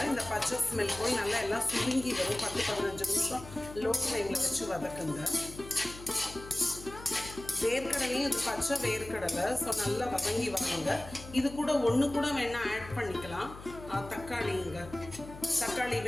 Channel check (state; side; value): noise; left; hum, 15 dB below the sound